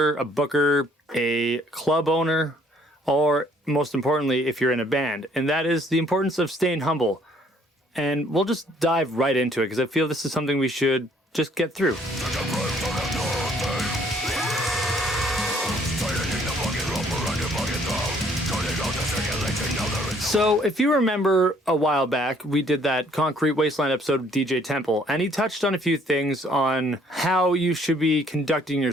a booker, a club owner, or most importantly, if you're in a band, and that is the importance of staying humble. And we'll just dive right into it because I feel this is something we should just get through. So, if you remember a while back, we did that Concrete Wasteland episode with DJ Temple, and he touched on a few things on how you should be conducting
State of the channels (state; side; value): normal; both; correlation 0.62